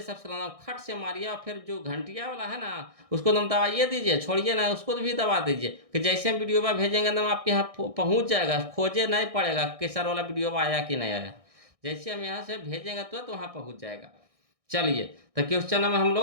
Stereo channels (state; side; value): late; left; 1.6 ms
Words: सब्सक्राइब खट से मारिए और फिर जो घंटिया वाला है ना उसको दम दबाइए दीजिए, छोड़िए ना उसको भी दबा दीजिए कि जैसे हम वीडियो में भेजेंगे दम आपके यहाँ पहुँच जाएगा, खोजे नहीं पड़ेगा कि सर वाला वीडियो आया कि नहीं आया। जैसे हम यहाँ से भेजेंगे तो वहाँ पहुँच जाएगा। चलिए तो क्वेश्चन नंबर हम